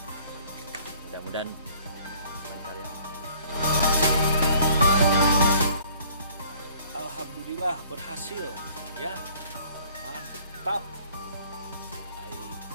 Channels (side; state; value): both; inverted; correlation -0.56